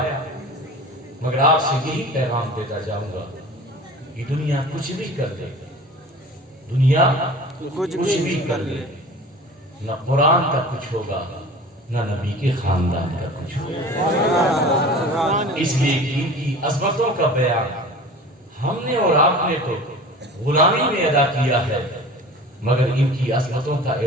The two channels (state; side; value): normal; both; correlation 0.40